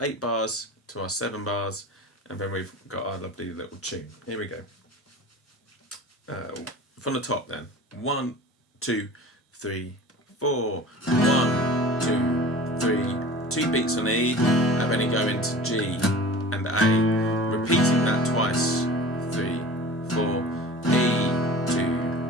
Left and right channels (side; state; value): both; normal; correlation 0.39